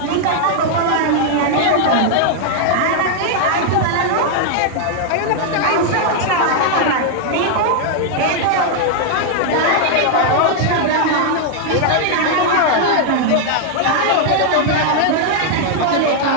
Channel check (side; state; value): both; different; correlation -0.01